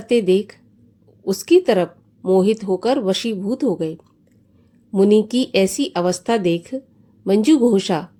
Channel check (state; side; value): identical; both; correlation 1.00